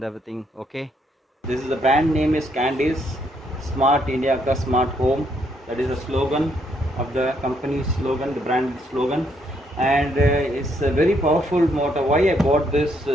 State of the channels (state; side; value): normal; both; correlation 0.73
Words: everything. Okay, this is the brand name is Candice Smart India Ka Smart Home. That is the slogan of the company slogan, the brand slogan, and it's a very powerful motor. Why I bought this